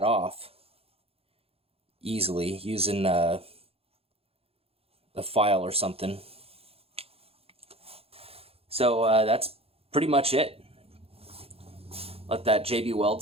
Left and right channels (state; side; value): late; left; 0.28 ms